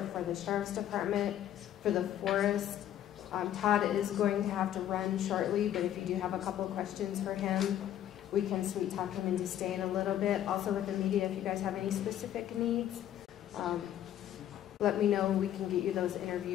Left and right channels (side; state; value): right; quieter; 11.3 dB